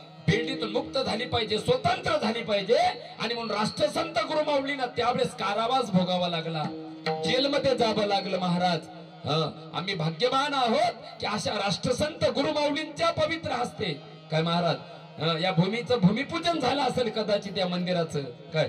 बेल्डीतून मुक्त झाली पाहिजे, स्वतंत्र झाली पाहिजे. आणि म्हणून राष्ट्रसंत गुरुमाऊलींना त्यावेळेस कारावास भोगावा लागला, जेलमध्ये जावं लागलं महाराज. आम्ही भाग्यवान आहोत की अशा राष्ट्रसंत गुरुमाऊलींच्या पवित्र हस्ते काय महाराज या भूमीचं भूमिपूजन झालं असेल कदाचित या मंदिराचं. काय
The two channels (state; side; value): identical; both; correlation 1.00